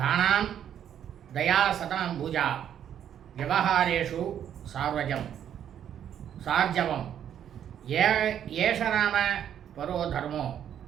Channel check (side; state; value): left; quieter; 9.6 dB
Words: தயா சதம் பூஜா விவகாரேஷு சார்ஜவம் ஏஷராம பரோ தர்மோ